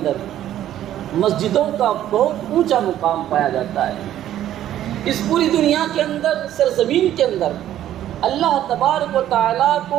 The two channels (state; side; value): quieter; left; 12.1 dB